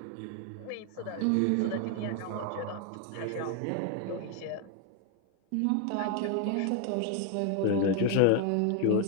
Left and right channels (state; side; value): different; both; correlation 0.00